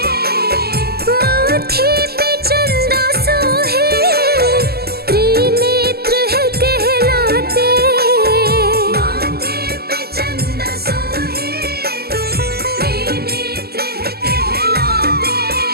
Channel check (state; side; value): late; left; 0.46 ms